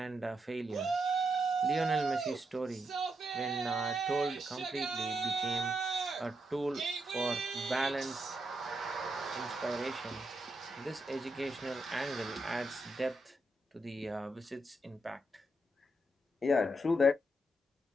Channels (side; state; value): both; normal; correlation 0.81